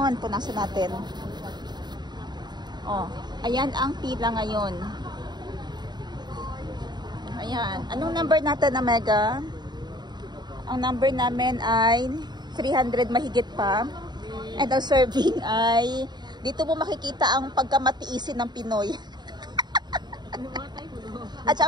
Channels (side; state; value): left; late; 0.21 ms